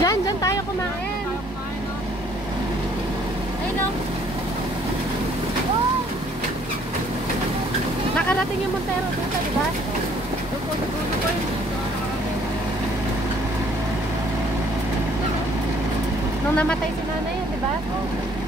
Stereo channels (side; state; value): both; normal; correlation 0.61